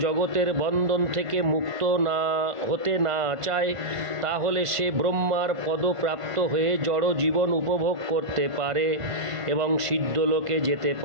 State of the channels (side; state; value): left; late; 1.5 ms